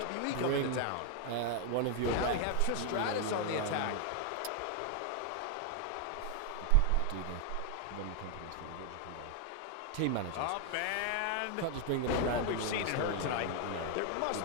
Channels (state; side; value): different; both; correlation 0.00